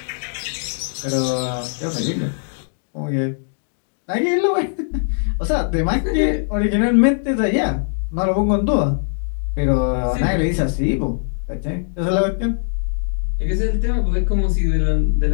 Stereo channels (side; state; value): right; silent; digital silence